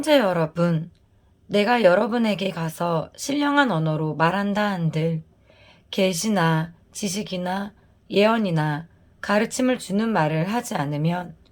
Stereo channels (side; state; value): both; identical; correlation 1.00